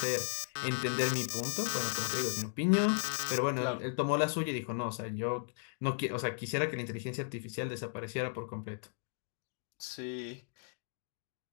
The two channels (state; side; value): silent; right; digital silence